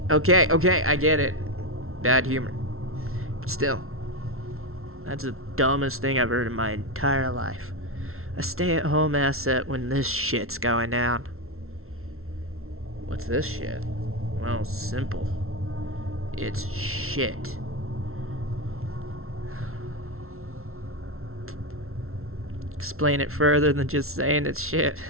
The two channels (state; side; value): late; left; 0.62 ms